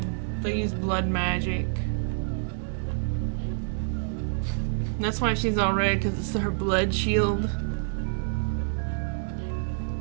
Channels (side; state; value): left; silent; digital silence